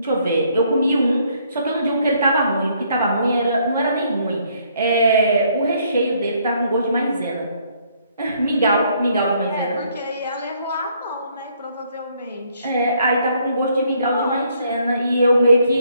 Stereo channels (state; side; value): inverted; both; correlation -0.68